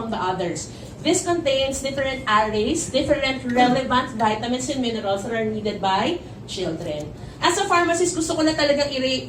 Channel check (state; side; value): identical; both; correlation 1.00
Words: the others? This contains different arrays, different relevant vitamins and minerals that are needed by children. As a pharmacist, gusto ko na talagang